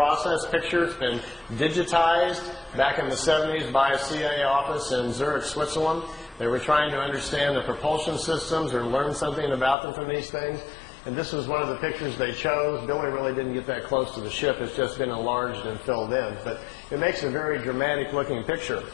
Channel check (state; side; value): drops out; right; at 9.8 s